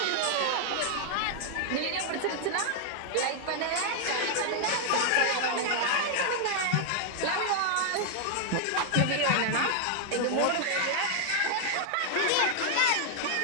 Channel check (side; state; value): both; different; correlation 0.00